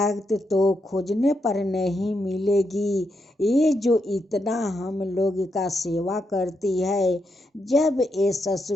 तो खोजने पर नहीं मिलेगी। ये जो इतना हम लोग का सेवा करती है, जब ये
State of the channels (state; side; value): normal; both; correlation 0.82